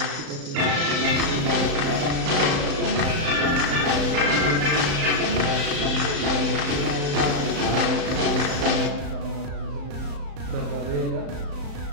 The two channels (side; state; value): left; late; 35 ms